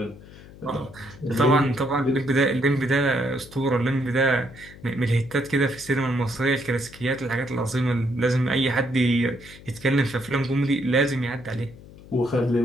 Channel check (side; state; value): left; noise; hum, 19 dB below the sound